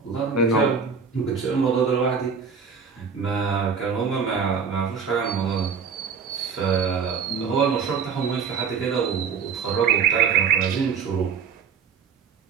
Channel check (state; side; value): quieter; left; 6.1 dB